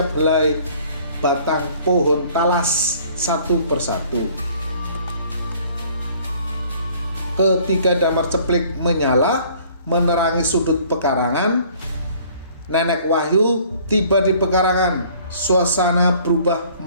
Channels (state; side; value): inverted; both; correlation -0.55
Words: helai batang pohon talas satu persatu. Ketika damar ceplik menyala menerangi sudut pekarangan, nenek Wahyu tiba di pekarangan. Suasana berubah